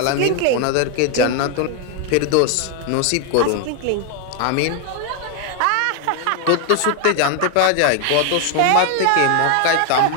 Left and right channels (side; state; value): both; different; correlation 0.01